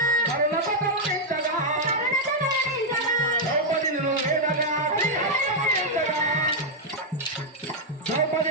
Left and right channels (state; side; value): normal; both; correlation -0.02